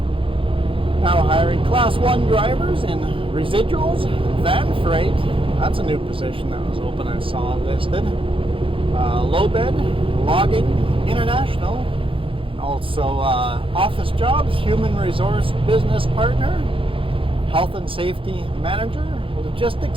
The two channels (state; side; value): late; left; 0.26 ms